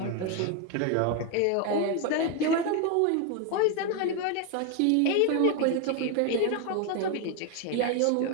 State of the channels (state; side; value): different; both; correlation 0.01